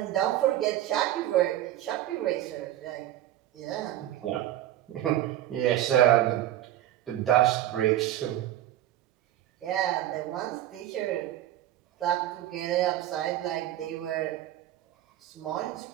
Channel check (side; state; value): left; quieter; 13.1 dB